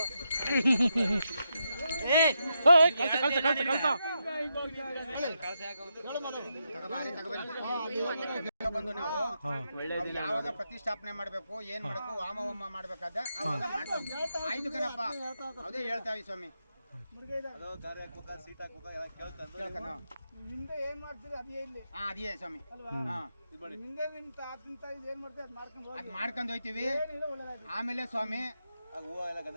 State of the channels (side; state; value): both; inverted; correlation -0.84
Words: ಬಂದು ನಾವು ಯಾವಾಗ ಪ್ರತಿಷ್ಠಾಪನೆ ಮಾಡ್ಬೇಕು, ಏನ್ ಮಾಡ್ಬೇಕು, ವಾಮ ಹೋಮ ಮಾಡ್ಬೇಕಾದ ಅವಾಗ ಮಾಡ್ತೀವಿ. ಆಯ್ತು ಕಣಪ್ಪ, ಅದೇ ಹೇಳ್ತಾವಿ ಸ್ವಾಮಿ. ಅದೇ ಸ್ವಾಮಿ, ಅದ್ ಮಾಡ್ಕೊಂಡು ಹೋಯ್ತಿವಿ. ಆಮೇಲೆ ಸ್ವಾಮಿ